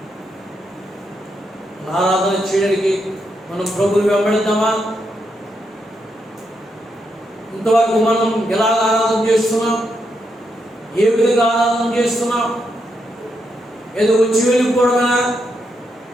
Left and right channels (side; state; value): both; normal; correlation 0.81